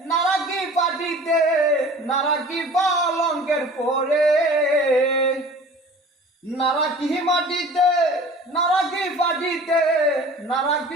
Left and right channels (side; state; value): both; normal; correlation 0.44